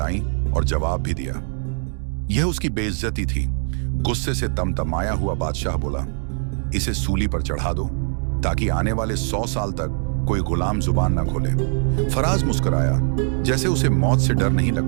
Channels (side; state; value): left; silent; 58 dB below the other